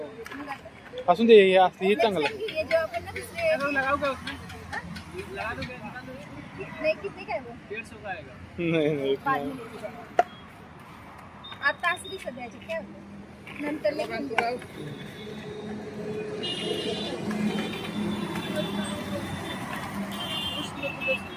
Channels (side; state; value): both; identical; correlation 1.00